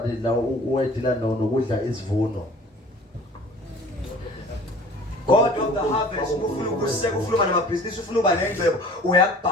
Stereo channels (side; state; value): both; normal; correlation 0.47